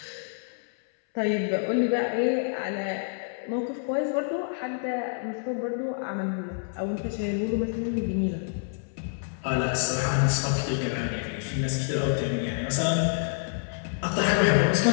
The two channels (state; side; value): silent; right; 60 dB below the other